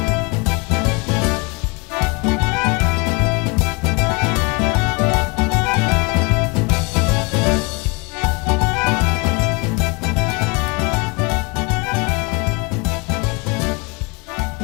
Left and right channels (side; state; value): right; quieter; 28.5 dB